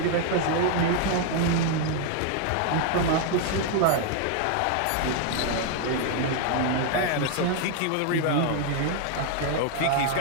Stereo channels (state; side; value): different; both; correlation 0.00